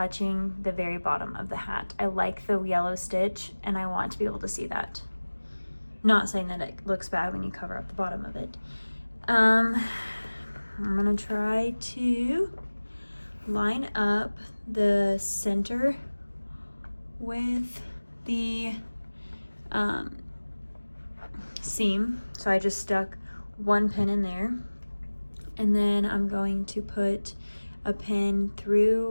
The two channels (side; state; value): both; inverted; correlation -1.00